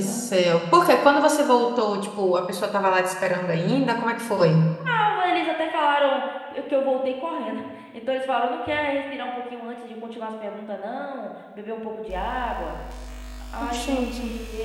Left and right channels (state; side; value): identical; both; correlation 1.00